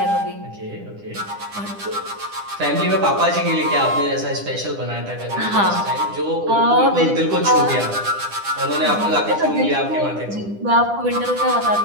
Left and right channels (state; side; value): late; left; 9.9 ms